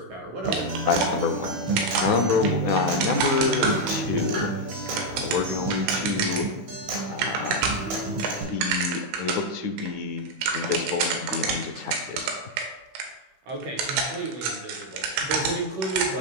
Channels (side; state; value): left; late; 16 ms